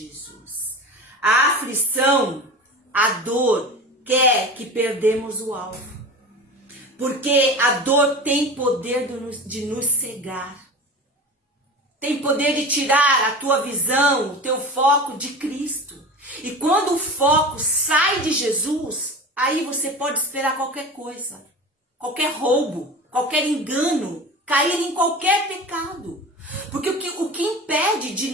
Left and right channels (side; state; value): both; normal; correlation 0.32